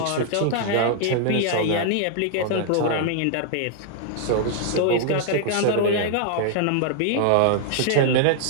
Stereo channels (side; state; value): both; different; correlation 0.00